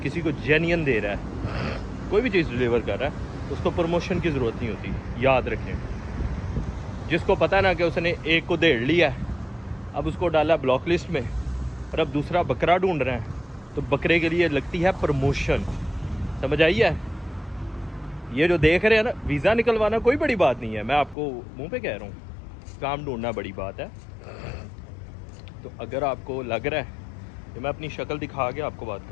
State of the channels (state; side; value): drops out; right; at 21.2 s